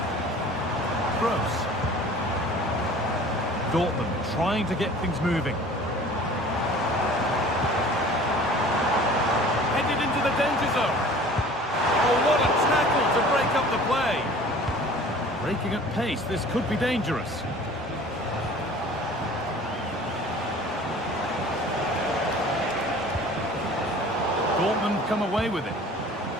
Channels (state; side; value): normal; both; correlation 0.46